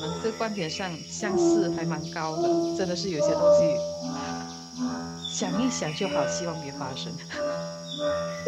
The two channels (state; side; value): identical; both; correlation 1.00